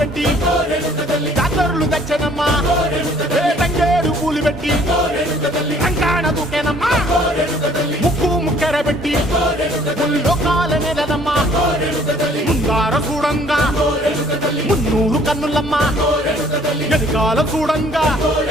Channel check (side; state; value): both; normal; correlation 0.58